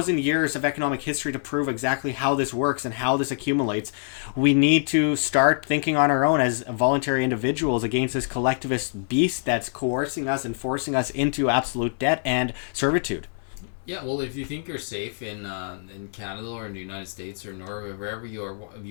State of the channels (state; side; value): silent; right; digital silence